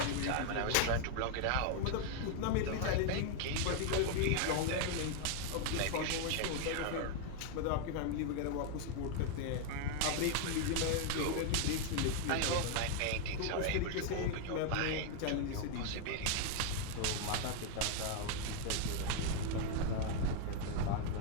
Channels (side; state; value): both; different; correlation 0.00